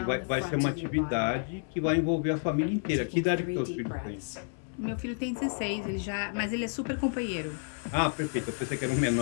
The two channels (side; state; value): right; silent; 58 dB below the other